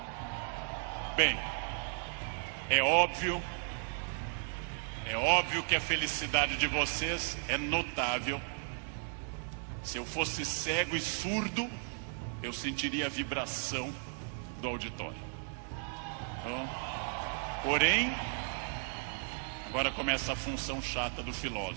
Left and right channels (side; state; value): left; silent; 54 dB below the other